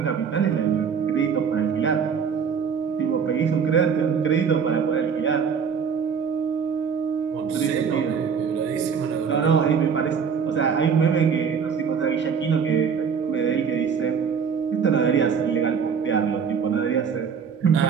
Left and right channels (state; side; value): quieter; left; 6.6 dB